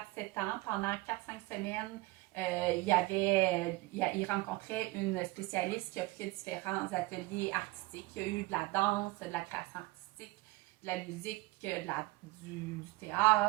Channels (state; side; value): quieter; left; 21.2 dB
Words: ans. Pendant 4-5 semaines, il rencontrait une spécialiste qui offrait différents ateliers artistiques. Il y a eu de la danse, de la création artistique, de la musique, du